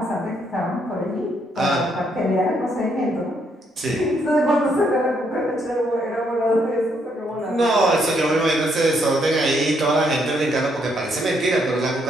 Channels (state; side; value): normal; both; correlation 0.73